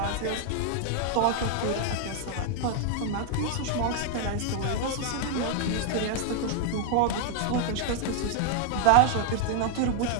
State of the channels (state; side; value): different; both; correlation 0.00